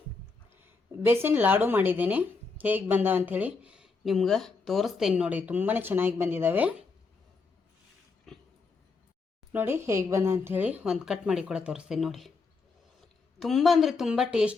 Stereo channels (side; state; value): right; quieter; 4.4 dB